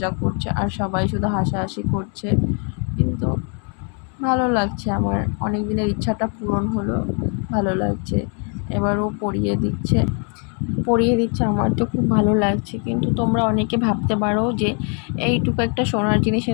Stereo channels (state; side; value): quieter; right; 39.6 dB